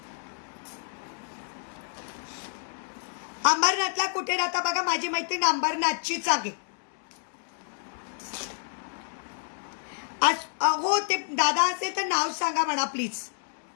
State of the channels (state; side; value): silent; right; digital silence